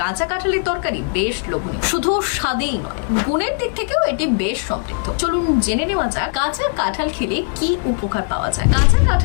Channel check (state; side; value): silent; right; 56 dB below the other